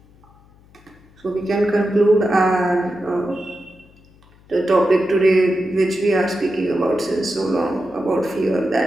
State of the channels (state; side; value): noise; left; hum, 28 dB below the sound